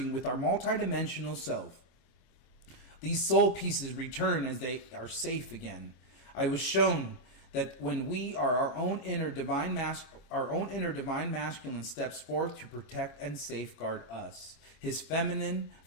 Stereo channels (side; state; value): right; late; 25 ms